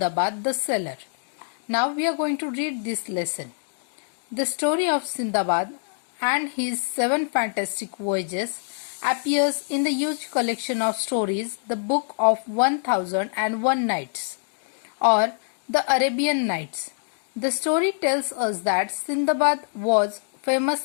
the Sailor. Now we are going to read this lesson. The story of Sindbad and his 7 fantastic voyages appears in the huge collection of stories, the Book of 1001 Nights, or the Arabian Nights. The story tells us that Sindbad was a famous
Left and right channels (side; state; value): right; silent; digital silence